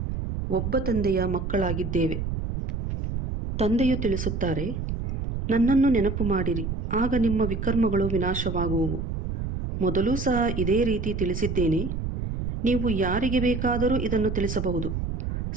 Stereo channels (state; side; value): noise; right; rumble, 3 dB below the sound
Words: ಒಬ್ಬ ತಂದೆಯ ಮಕ್ಕಳಾಗಿದ್ದೇವೆ. ತಂದೆಯು ತಿಳಿಸುತ್ತಾರೆ, ನನ್ನನ್ನು ನೆನಪು ಮಾಡಿರಿ, ಆಗ ನಿಮ್ಮ ವಿಕರ್ಮಗಳು ವಿನಾಶವಾಗುವವು. ಮೊದಲೂ ಸಹ ಇದೇ ರೀತಿ ತಿಳಿಸಿದ್ದೇನೆ. ನೀವು ಯಾರಿಗೆ ಬೇಕಾದರೂ ಇದನ್ನು ತಿಳಿಸಬಹುದು.